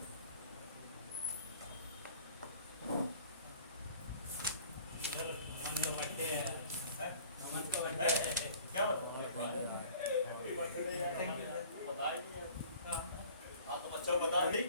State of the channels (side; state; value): both; inverted; correlation -0.49